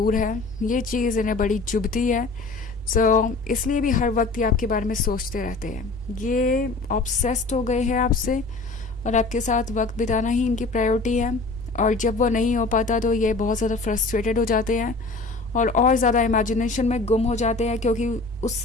है। ये चीज़ इन्हें बड़ी चुभती है। सो इसलिए भी हर वक्त ये आपके बारे में सोचते रहते हैं। ये ऑब्सेस्ड हो गए हैं आपसे और आपके साथ वक्त बिताना ही इनकी प्रायोरिटी है। और जब वो नहीं हो पाता तो ये बहुत ज़्यादा फ्रस्ट्रेटेड हो जाते हैं और ज़्यादा इमेजिनेशन में गुम हो जाते हैं, क्योंकि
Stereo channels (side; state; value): right; quieter; 3.6 dB